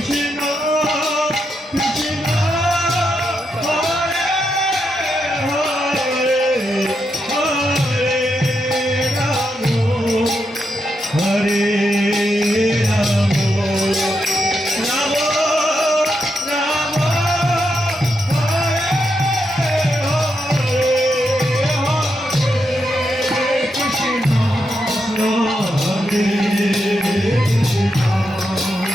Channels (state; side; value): normal; both; correlation 0.83